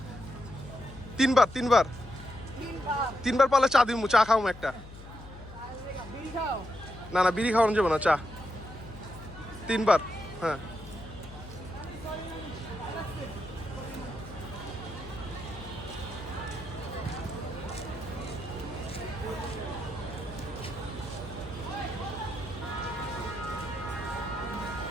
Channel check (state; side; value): noise; left; hum, 15 dB below the sound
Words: তিনবার পালে চা দিমু, চা খাওয়াম একটা। না না, বিড়ি খাওয়ানো যাবে না, চা 3বার। হ্যাঁ